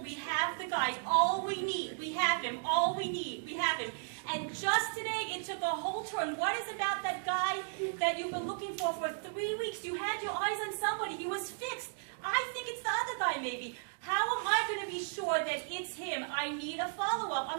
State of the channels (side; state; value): left; silent; digital silence